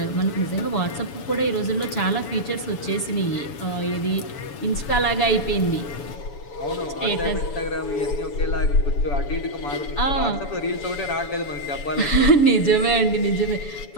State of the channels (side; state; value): right; late; 7.0 ms